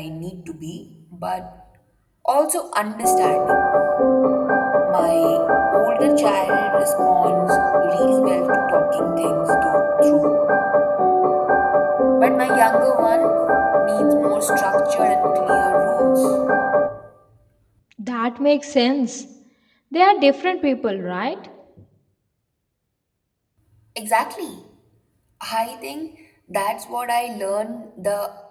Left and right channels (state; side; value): identical; both; correlation 1.00